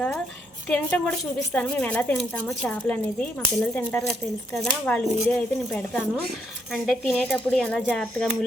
తినటం కూడా చూపిస్తాను, మేము ఎలా తింటామో చేపలు అనేది. మా పిల్లలు తింటారు కదా, తెలుసు కదా, వాళ్ళ వీడియో అయితే నేను పెడతాను. అంటే తినేటప్పుడు ఎలా జాగ్రత్తగా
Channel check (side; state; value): both; normal; correlation 0.74